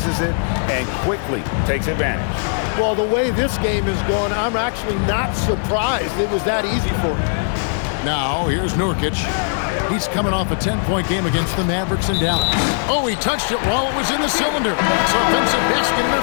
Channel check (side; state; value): right; silent; 66 dB below the other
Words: it and quickly takes advantage. Well, the way this game is going, I'm actually not surprised it was that easy for him. Now, here's Nurkic. He's coming off a 10-point game against the Mavericks in Dallas. Oh, he touched it while it was in the cylinder. It's offensive basket